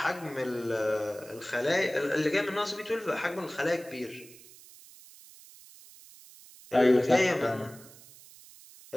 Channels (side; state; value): right; noise; hiss, 21 dB below the sound